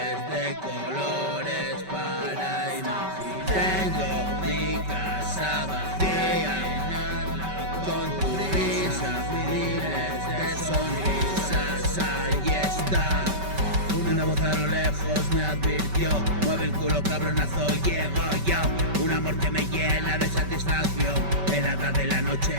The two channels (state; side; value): late; left; 5.2 ms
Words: de colores para imaginar. Tengo mi casa vacía, con tu risa, miles de sonrisas, ahí está. Una voz a lo lejos me advirtió, mueve el culo cabronazo, llego yo. Un amor que me llena de satisfacción, helada de la